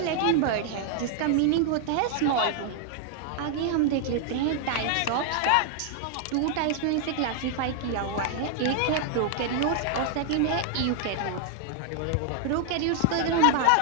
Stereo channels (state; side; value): different; both; correlation 0.00